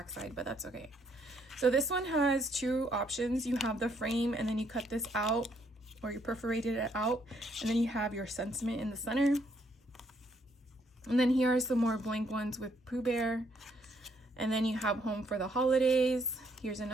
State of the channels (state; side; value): normal; both; correlation 0.71